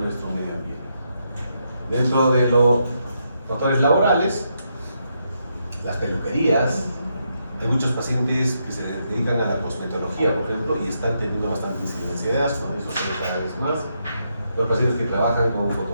medio ambiente. Dentro de los factores laborales, las peluquerías, hay muchos pacientes que se dedican a la cosmetología, por ejemplo, y están teniendo bastante incidencia de asma, eso se ve cada vez más. Los pacientes que trabajan con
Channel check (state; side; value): inverted; both; correlation -0.80